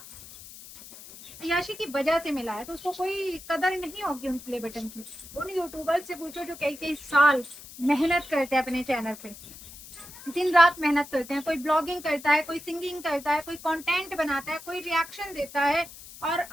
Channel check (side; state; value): left; noise; hiss, 16 dB below the sound